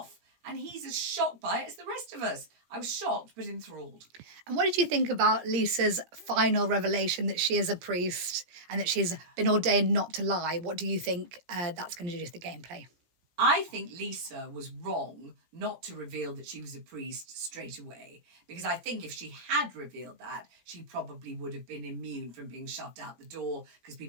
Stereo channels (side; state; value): left; late; 17 ms